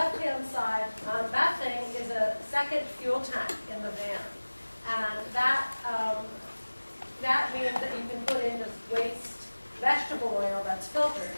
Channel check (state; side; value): inverted; both; correlation -1.00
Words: side, that thing is a second fuel tank in the van. And that means that you can put in just waste vegetable oil that's filtered.